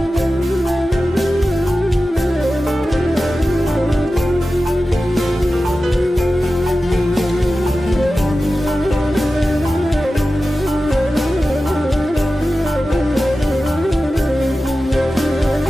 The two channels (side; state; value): both; normal; correlation 0.94